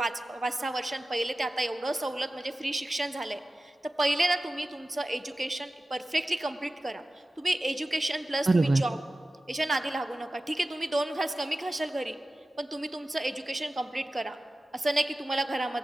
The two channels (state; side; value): normal; both; correlation 0.95